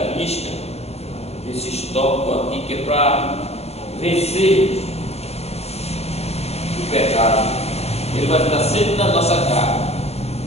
risca esse tópico aqui, que é para vencer o pecado. Ele vai estar sempre na nossa cara,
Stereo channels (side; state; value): right; late; 0.30 ms